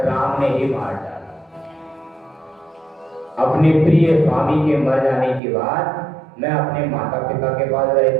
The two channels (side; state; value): left; drops out; at 5.4 s